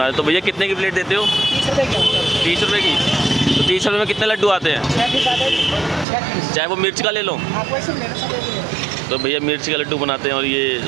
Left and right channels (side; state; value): left; drops out; at 6.1 s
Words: रहे। तो भैया कितने की प्लेट देते हो? 30 रुपये की। 30 रुपये की? तो 30 रुपये में कितने लड्डू आते हैं? 6 पीस। चाहे वो मिर्च का ले लो। तो भैया मिर्च का लड्डू बनाते हैं और ये